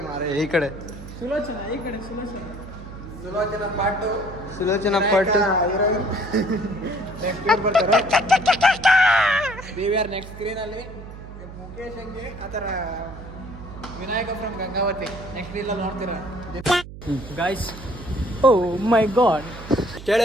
ಮಾರೆ, ಈ ಕಡೆ ಸುಲೋಚನ ಪಾಟು ನೆಕ್ಸ್ಟ್ ಸ್ಕ್ರೀನ್ ಅಲ್ಲಿ ಮುಖೇಶ್ ಹಂಗೆ ಆ ಥರ ವಿನಾಯಕ ಫ್ರಮ್ ಗಂಗಾವತಿ ನೆಕ್ಸ್ಟ್ ರೀಲಲ್ಲಿ ನೋಡ್ತೀರಾ ಗಾಯ್ಸ್ ಓ ಮೈ ಗಾಡ್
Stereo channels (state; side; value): noise; right; hum, 13 dB below the sound